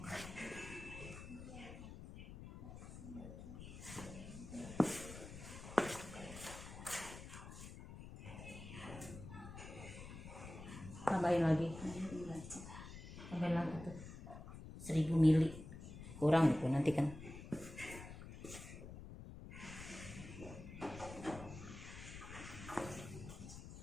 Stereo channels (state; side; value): noise; left; rumble, 12 dB below the sound